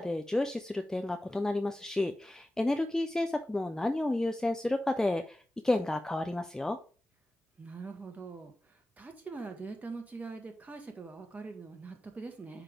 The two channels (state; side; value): normal; both; correlation 0.95